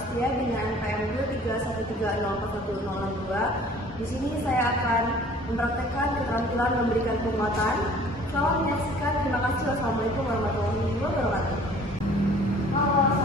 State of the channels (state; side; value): normal; both; correlation 0.51